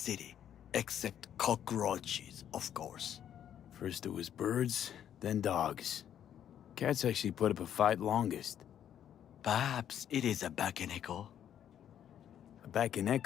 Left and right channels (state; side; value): quieter; right; 9.9 dB